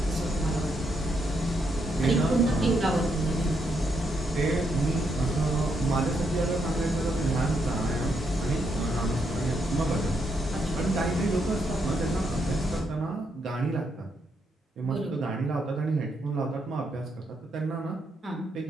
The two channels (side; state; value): both; normal; correlation 0.78